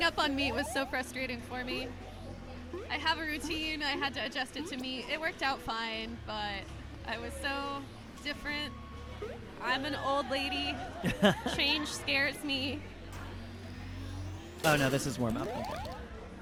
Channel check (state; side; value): identical; both; correlation 1.00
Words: up on meat was so frustrating for me. I have a routine. I had to adjust it to meat. It worked out fine, but I was so different. I'm an old lady. Change scares me. Oh no, this is warm up. Okay.